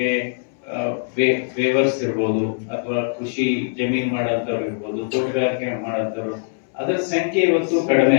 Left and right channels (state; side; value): silent; right; 65 dB below the other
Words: ವೇವರ್ಸ್ ಇರ್ಬೋದು ಅಥವಾ ಕೃಷಿ ಜಮೀನ್ ಮಾಡೋಂಥವ್ರು ಇರ್ಬೋದು, ತೋಟಗಾರಿಕೆ ಮಾಡೋಂಥವ್ರು, ಅದರ ಸಂಖ್ಯೆ ಇವತ್ತು ಕಡಿಮೆ